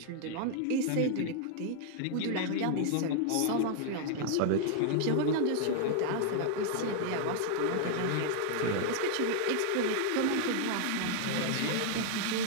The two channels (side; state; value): both; different; correlation 0.00